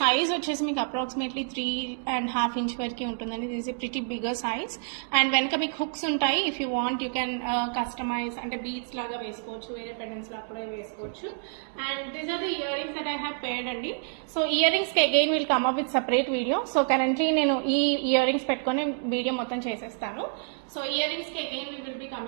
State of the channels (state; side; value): silent; left; 59 dB below the other